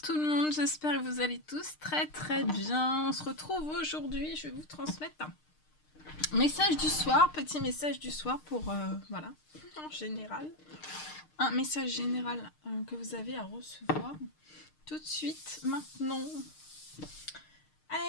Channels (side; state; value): right; late; 6.5 ms